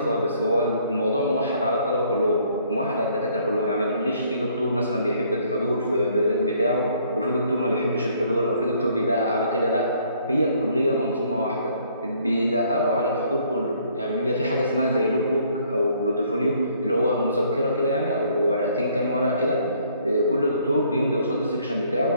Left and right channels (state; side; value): inverted; both; correlation -0.63